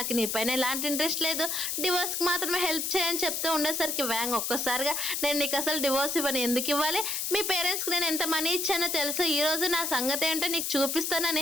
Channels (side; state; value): left; noise; hiss, 1 dB below the sound